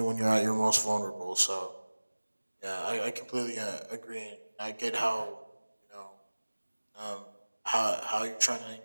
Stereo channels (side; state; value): both; inverted; correlation -1.00